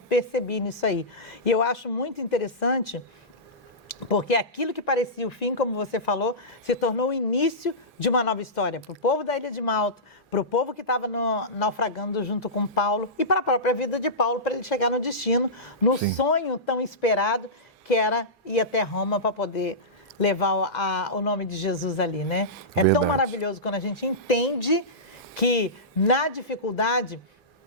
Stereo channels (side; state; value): both; normal; correlation -0.17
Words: percebi nisso aí. E eu acho muito interessante, porque aquilo que parecia o fim, como você falou, se tornou o início de uma nova história para o povo da Ilha de Malta, para o povo que estava naufragando junto com Paulo e para a própria vida de Paulo, para ele chegar no destino, no Sim. sonho tão esperado que era ir até Roma para poder levar o nome de Jesus ali, né? É Verdade. tão maravilhoso quando a gente entende que na dificuldade...